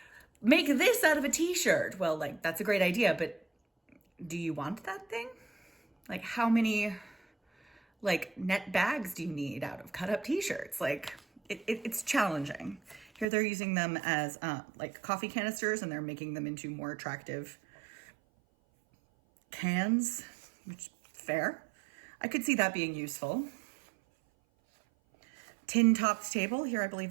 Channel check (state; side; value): drops out; left; at 13.2 s